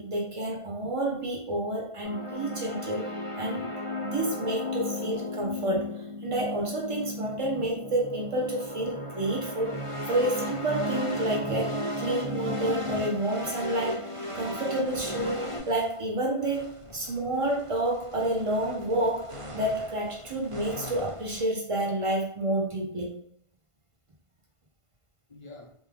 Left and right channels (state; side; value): late; left; 1.5 ms